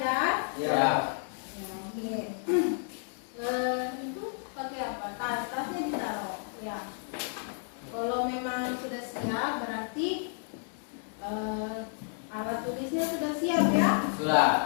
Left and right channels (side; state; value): right; silent; 57 dB below the other